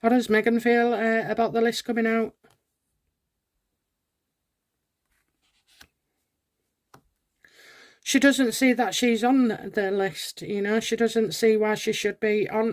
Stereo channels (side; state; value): both; identical; correlation 1.00